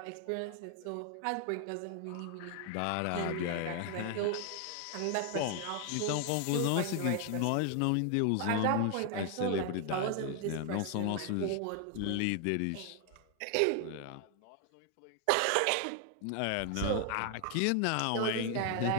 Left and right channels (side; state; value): both; different; correlation 0.00